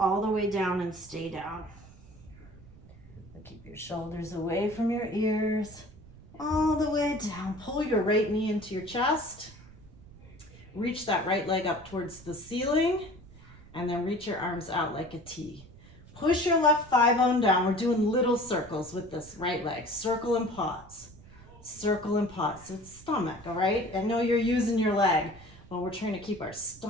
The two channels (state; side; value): noise; right; rumble, 21 dB below the sound